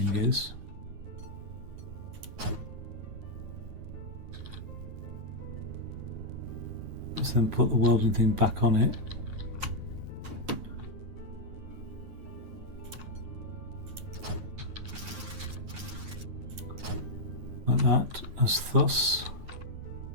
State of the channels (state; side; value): late; left; 9.4 ms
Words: is. Let's then put the welding thing back on it. Like that, as thus.